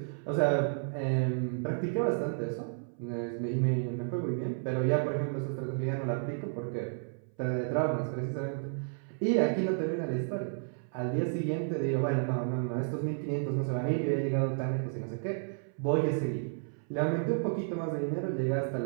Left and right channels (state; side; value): silent; left; 56 dB below the other